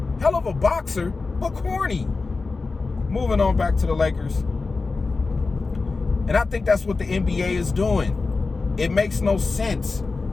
Hell of a boxer, but corny. Moving on back to the Lakers. And I think that's what the NBA is doing. It makes no sense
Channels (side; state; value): right; quieter; 4.0 dB